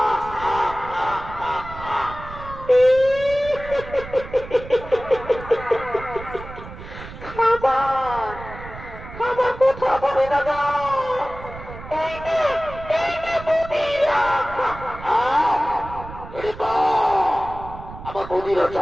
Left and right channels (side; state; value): right; noise; rumble, 13 dB below the sound